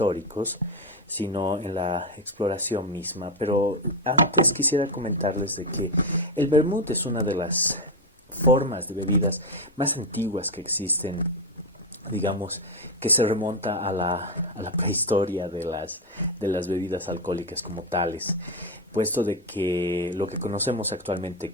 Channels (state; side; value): normal; both; correlation 0.08